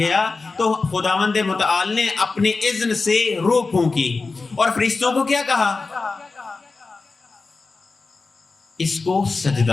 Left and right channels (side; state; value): right; quieter; 4.0 dB